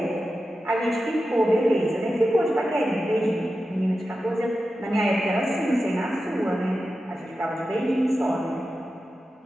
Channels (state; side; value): normal; both; correlation 0.92